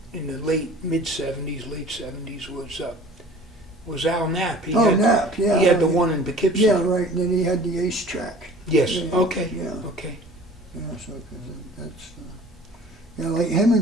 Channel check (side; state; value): both; normal; correlation 0.46